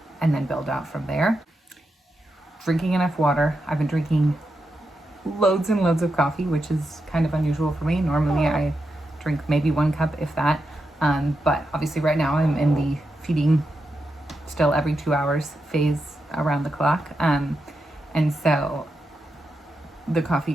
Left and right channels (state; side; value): normal; both; correlation 0.86